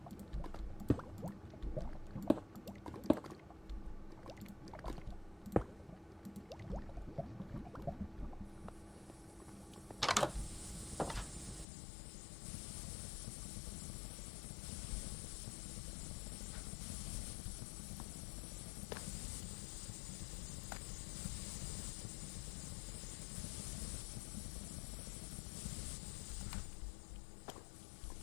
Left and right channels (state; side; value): drops out; right; at 11.7 s